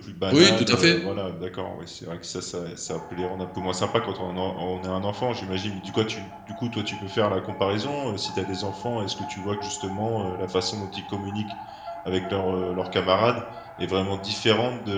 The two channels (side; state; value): both; identical; correlation 1.00